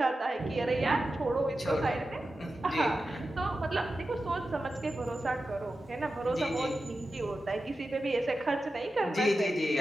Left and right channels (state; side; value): normal; both; correlation 0.92